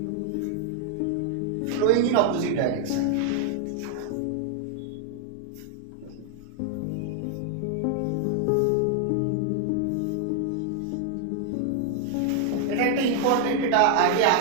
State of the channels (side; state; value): both; different; correlation 0.00